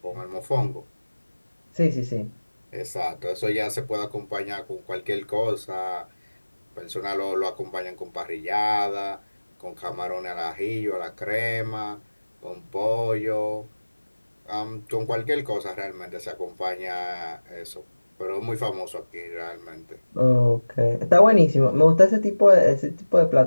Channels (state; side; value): inverted; both; correlation -1.00